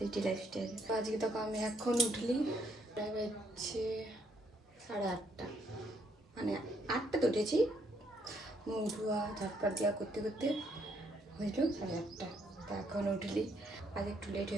Lifestyle. তো আজকে তো আমি এখন উঠলি প্রায় বাজছে 8:30, মানে 8টা তো উঠেছি, মুখ ধোয়া ঝটপট দেওয়া করতে করতে হয়েছিল 8:30। তা এখন উঠলি, আজ একটু লেট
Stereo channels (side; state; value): both; normal; correlation 0.71